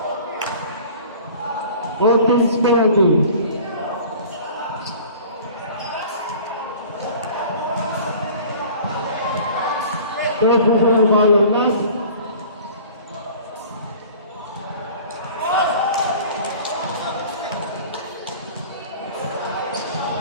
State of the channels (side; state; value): both; inverted; correlation -0.45